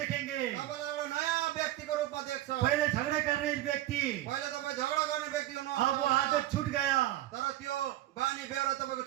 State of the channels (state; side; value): quieter; left; 14.5 dB